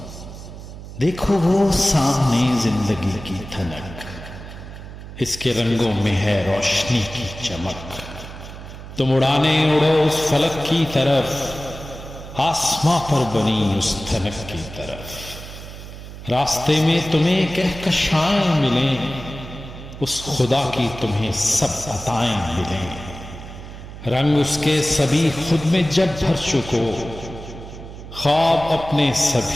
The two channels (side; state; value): right; noise; hum, 13 dB below the sound